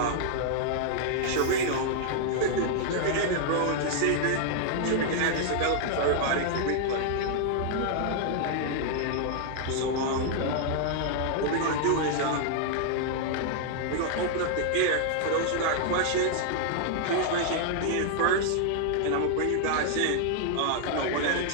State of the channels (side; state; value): both; different; correlation -0.01